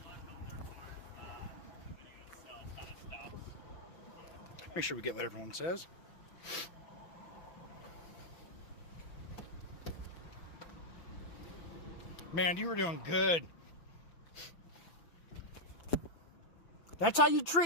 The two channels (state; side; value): late; right; 5.9 ms